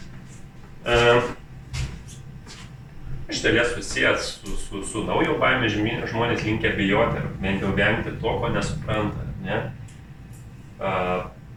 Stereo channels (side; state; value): both; identical; correlation 1.00